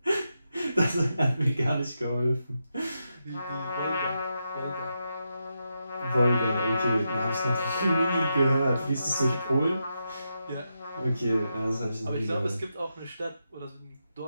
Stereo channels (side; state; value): both; inverted; correlation -0.86